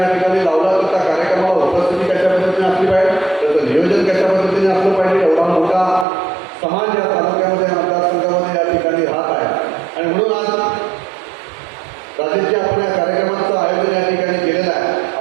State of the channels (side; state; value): left; drops out; at 6.1 s